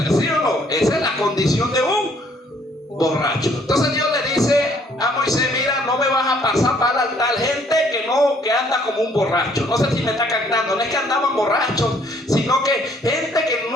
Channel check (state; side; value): normal; both; correlation 0.63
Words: ¿Sí o no? Esa es la condición de un borracho. Entonces Dios le dice a Moisés: mira, no me vas a pasar para el altar gente que anda como un borracho. No sé si me está captando. No es que andaban borrachos, sino que gente que